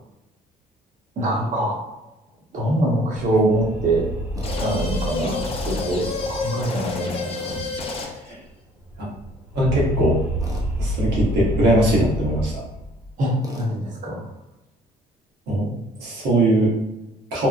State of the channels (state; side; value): normal; both; correlation 0.57